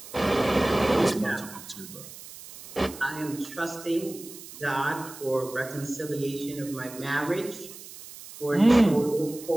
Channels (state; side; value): noise; right; hiss, 15 dB below the sound